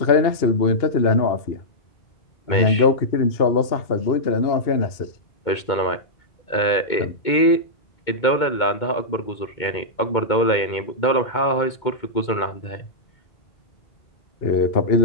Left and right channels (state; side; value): late; right; 2.2 ms